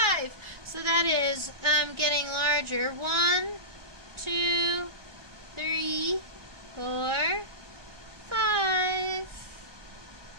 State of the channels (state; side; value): late; left; 1.4 ms